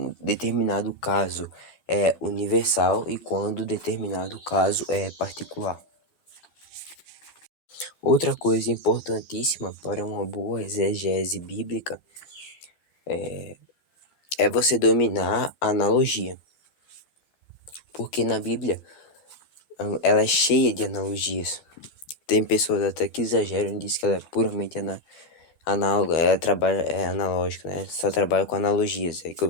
determinado caso é universal e quando determinado caso é particular. Outra coisa importantíssima para uma boa exegese bíblica é você dominar a analogia. Porque na Bíblia ela é cheia de analogias. Tem pessoas até que exageram e dizem que ela é puramente análoga, ela trabalha, é analógica, né? Só trabalha com analogias, é o que eu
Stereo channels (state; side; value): late; right; 13 ms